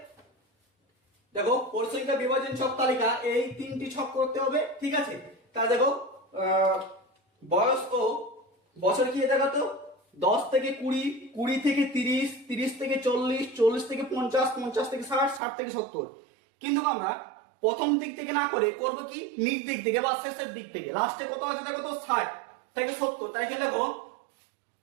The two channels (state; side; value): drops out; left; at 15.4 s